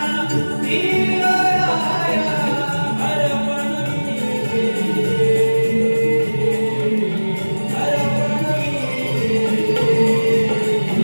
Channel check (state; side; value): inverted; both; correlation -1.00